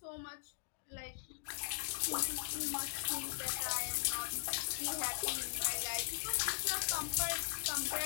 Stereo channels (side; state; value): right; silent; digital silence